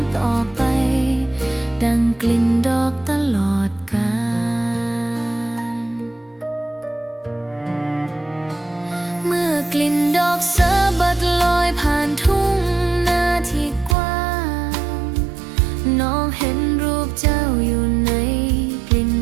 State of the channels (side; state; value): left; drops out; at 14.0 s